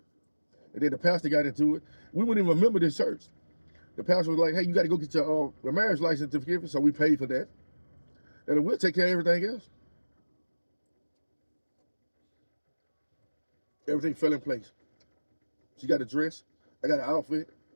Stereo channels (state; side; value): inverted; both; correlation -1.00